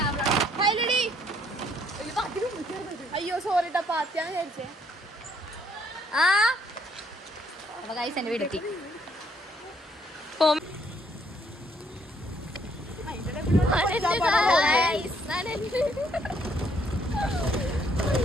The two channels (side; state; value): both; normal; correlation 0.68